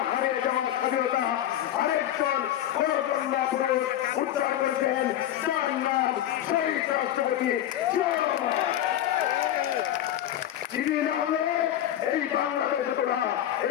হারিয়ে যাওয়া স্বাধীনতা আরেকজন খরচন পুরুষ উদ্ধার করেছেন, তার নাম শহীদ রাষ্ট্রপতি জিয়া রহমান। যিনি না হলে এই বাংলাদেশ হতো না,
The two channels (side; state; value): right; quieter; 12.0 dB